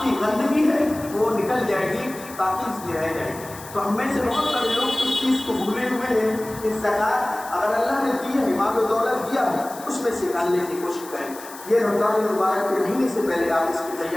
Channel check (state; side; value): noise; left; hiss, 16 dB below the sound